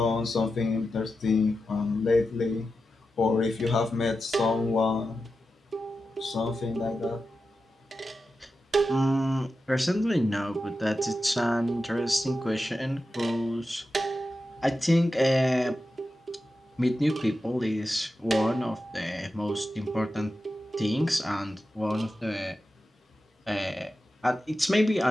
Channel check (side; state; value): both; normal; correlation 0.91